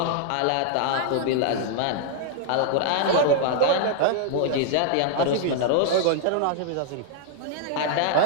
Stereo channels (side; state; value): both; different; correlation -0.01